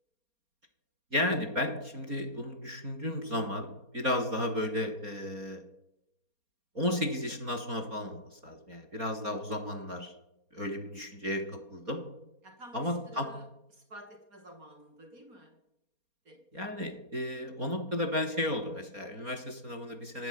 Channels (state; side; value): late; left; 4.3 ms